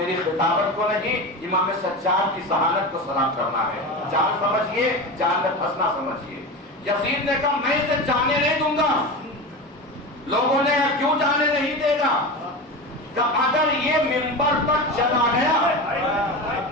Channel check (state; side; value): normal; both; correlation 0.25